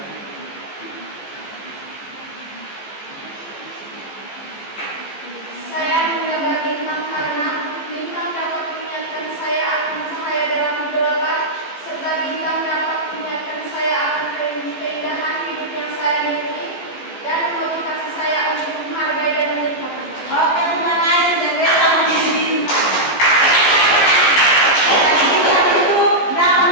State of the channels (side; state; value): right; late; 14 ms